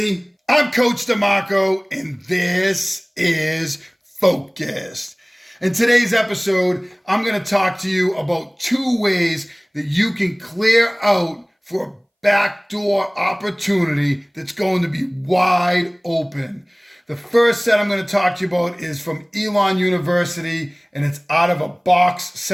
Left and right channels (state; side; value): identical; both; correlation 1.00